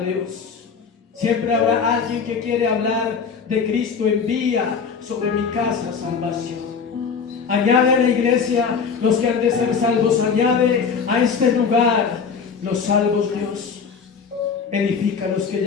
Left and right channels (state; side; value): quieter; right; 5.9 dB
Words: Dios. Siempre habrá alguien que quiere hablar de Cristo. Envía sobre mi casa salvación. Añade a la iglesia los que han de ser salvos. Añade a este lugar los salvos, Dios. Edifica a los que